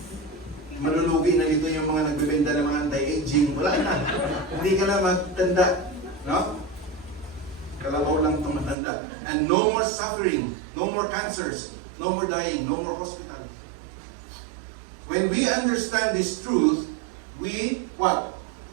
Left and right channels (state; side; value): drops out; left; at 8.8 s